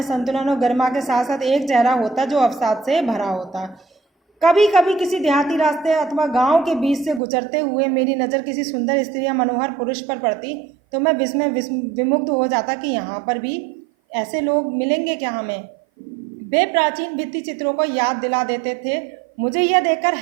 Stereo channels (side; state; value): left; drops out; at 7.2 s